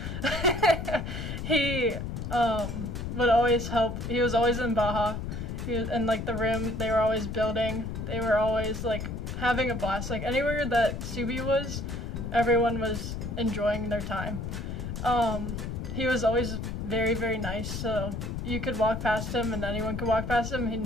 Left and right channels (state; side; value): noise; left; rumble, 5 dB below the sound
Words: He would always help. He was always in Baja. He was in like the room they were always building. They were always like having a blast. Like anywhere that Subi was, everyone was enjoying their time. He was always very, very nice, so you could walk past him and anyone could walk past him and